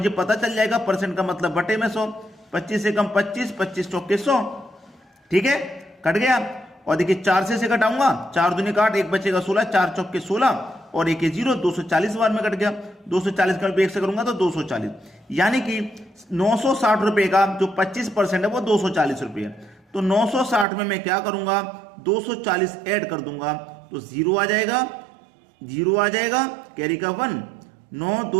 पता चल जाएगा परसेंट का मतलब बटे में 100, 25 से कम 25, 25 चौके 100, ठीक है, कट गया। और देखिए 4 से घटाऊंगा, 4 दूनी 8, 1 बचेगा 16, 4 चौके 16 और 1 0, 240 बार में कट गया। 240 का 1 से करूंगा तो 240, यानी कि 960 रुपए का जो 25% है वो 240 रुपए है। तो 960 में मैं क्या करूंगा, 240 ऐड कर दूंगा तो 0 आ जाएगा, 0 आ जाएगा, कैरी का 1, 9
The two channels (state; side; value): drops out; left; at 20.7 s